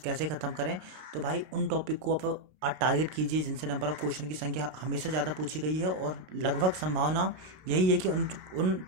कैसे ख़त्म करें, तो भाई उन टॉपिक को आप टारगेट कीजिए जिनसे नंबर ऑफ क्वेश्चन की संख्या हमेशा ज़्यादा पूछी गई है और लगभग संभावना यही है कि उन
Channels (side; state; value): left; late; 32 ms